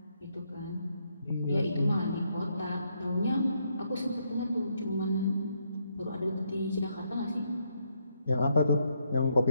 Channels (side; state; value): both; inverted; correlation -0.76